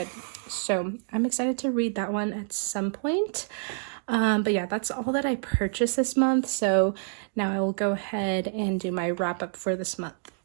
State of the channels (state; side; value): silent; left; digital silence